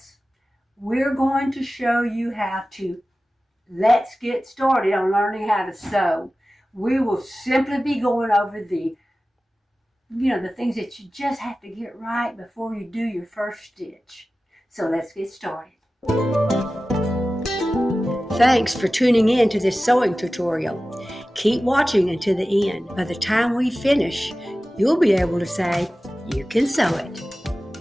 we're going to show you how to let's get started on learning how to sew. We will simply be going over the things that you just have to get right before you do your first stitch. So let's get started. Thanks for tuning in to this sewing tutorial. Keep watching until the end. By the time we finish, you'll be able to say, you can sew it.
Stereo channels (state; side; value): normal; both; correlation 0.96